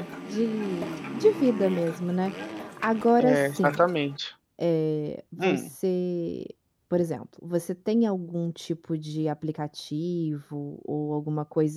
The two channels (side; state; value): both; identical; correlation 1.00